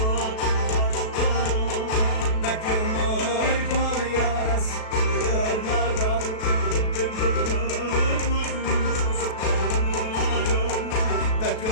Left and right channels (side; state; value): right; late; 37 ms